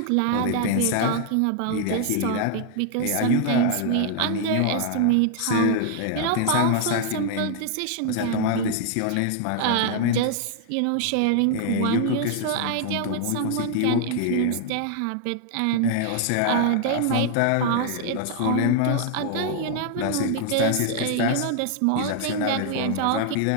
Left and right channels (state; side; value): different; both; correlation 0.00